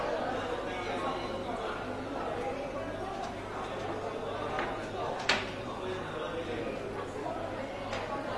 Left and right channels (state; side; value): identical; both; correlation 1.00